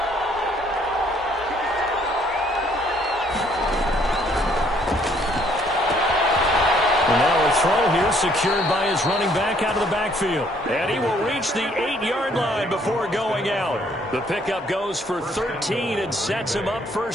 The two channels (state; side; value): normal; both; correlation 0.64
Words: Throw here secured by his running back out of the backfield. And he will reach the 8-yard line before going out. The pickup goes for 13 and sets him up